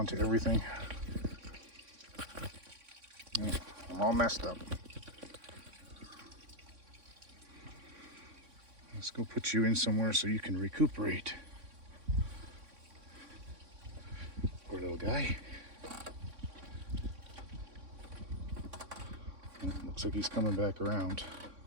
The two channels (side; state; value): left; late; 3.6 ms